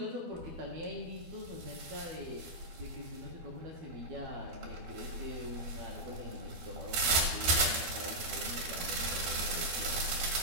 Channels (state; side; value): late; left; 12 ms